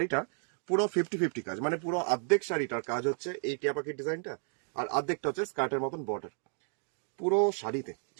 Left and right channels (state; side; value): silent; left; 56 dB below the other